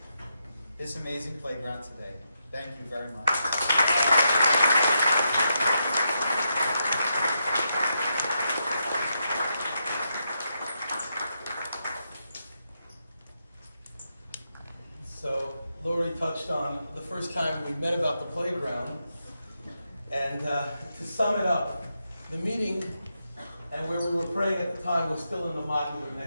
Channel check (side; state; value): both; inverted; correlation -0.83